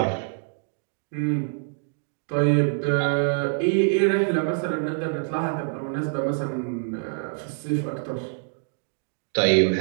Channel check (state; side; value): silent; left; digital silence